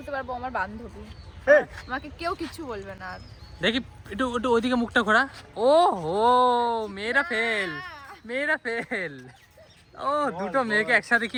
পারবো আমার বান্ধবী। আমাকে কেউ কিছু বলবে না আর। দেখি একটু একটু ওইদিকে মুখটা ঘোরা। ও হো, মেয়েরা ফেল, মেয়েরা ফেল। ও দুটো মেয়েকে একসাথে কি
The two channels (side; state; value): both; identical; correlation 1.00